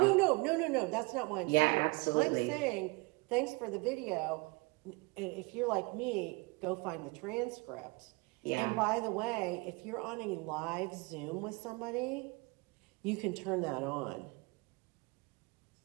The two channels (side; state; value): left; quieter; 26.3 dB